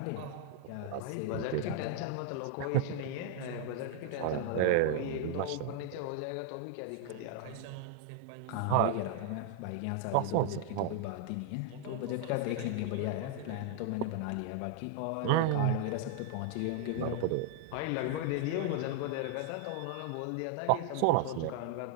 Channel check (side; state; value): both; different; correlation 0.00